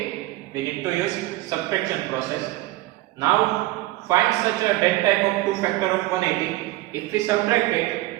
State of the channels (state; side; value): quieter; left; 18.2 dB